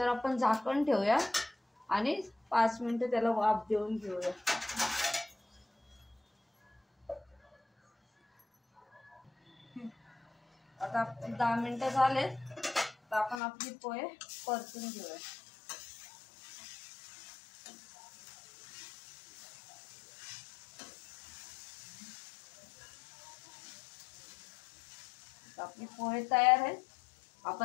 आपण झाकण ठेवूया आणि 5 मिनिटं त्याला वाफ देऊन घेऊया। आता 10 मिनिटं झाले, तर आपण आपली पोहे परतून घेऊया। आपली पोहे तयार आहेत,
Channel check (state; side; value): drops out; right; at 13.4 s